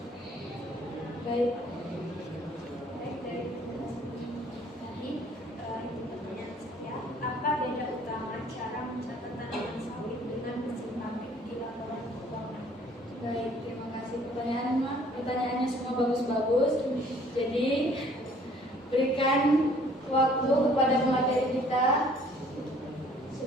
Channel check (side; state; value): both; normal; correlation 0.57